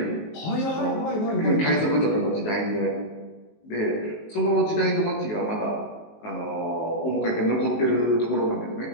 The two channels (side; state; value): right; late; 19 ms